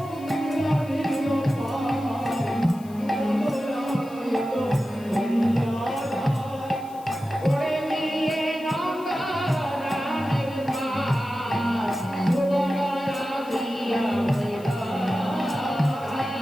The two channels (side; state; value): left; noise; hiss, 24 dB below the sound